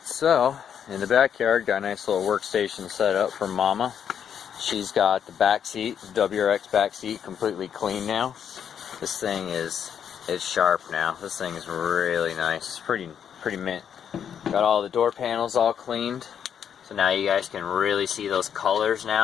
so in the backyard, got a nice little workstation set up for Mama. She's got the back seat, WRX back seat, completely clean now. This thing is sharp now. This thing is really nice. It's pretty mint. Got all the door panels all cleaned, so now you guys can really see those colors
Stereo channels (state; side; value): quieter; right; 8.3 dB